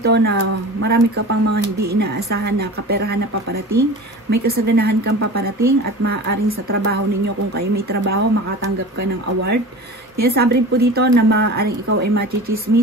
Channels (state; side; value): normal; both; correlation 0.35